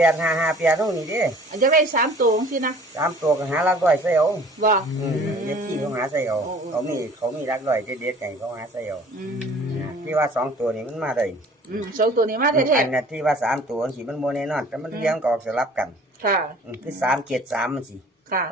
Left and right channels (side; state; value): both; normal; correlation 0.50